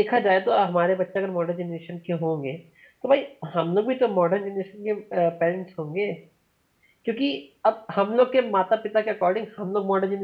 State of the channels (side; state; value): both; identical; correlation 1.00